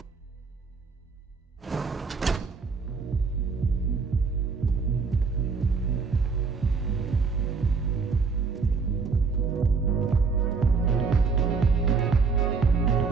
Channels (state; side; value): quieter; left; 4.9 dB